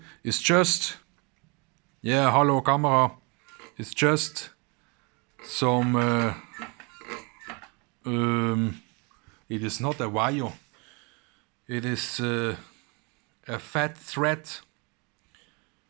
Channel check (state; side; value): quieter; left; 30.4 dB